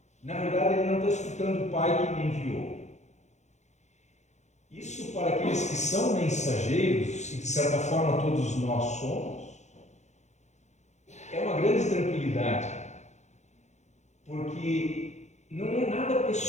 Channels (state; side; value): late; right; 0.33 ms